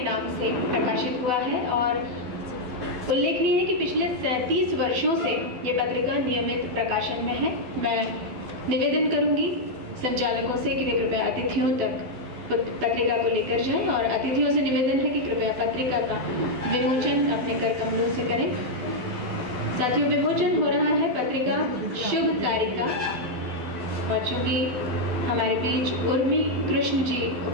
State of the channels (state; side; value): late; left; 12 ms